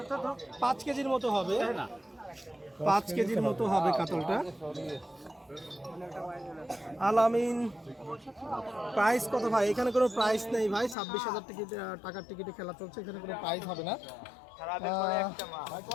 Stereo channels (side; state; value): right; drops out; at 11.0 s